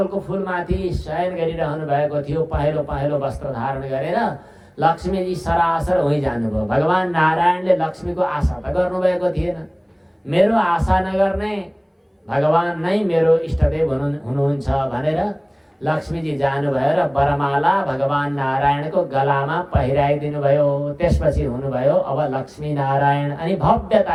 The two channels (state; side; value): identical; both; correlation 1.00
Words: फुलमाथि शयन गरिरहनु भएको थियो, पहेँलो पहेँलो वस्त्र धारण गरेर। लक्ष्मीजी सरासर उहीँ जानुभयो। भगवान नारायणले लक्ष्मीको आशा त गर्नुभएको थिएन। मेरो आशा नगर्ने भगवान नै मेरो इष्टदेव हुनुहुन्छ भनेर लक्ष्मीजी जानुभयो र वरमाला भगवान नारायणको गलामा पहिराइदिनु भयो। त्यसपछि हुनुभयो अब लक्ष्मी नारायण अनि